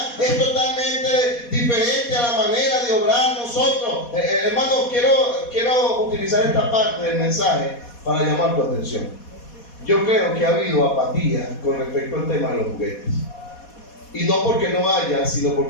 es totalmente diferente a la manera de obrar nosotros. Hermano, quiero utilizar esta parte del mensaje para llamar tu atención. Yo creo que ha habido apatía con respecto al tema de los juguetes. Y no porque no haya, sino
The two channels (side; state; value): right; late; 4.2 ms